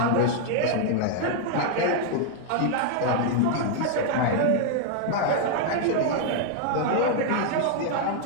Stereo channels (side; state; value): both; different; correlation 0.00